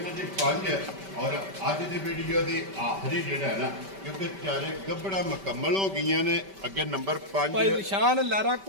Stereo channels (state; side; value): late; left; 5.1 ms